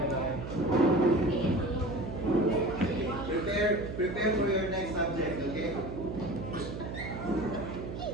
Prepare for your next subject, okay?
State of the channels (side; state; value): right; noise; hum, 7 dB below the sound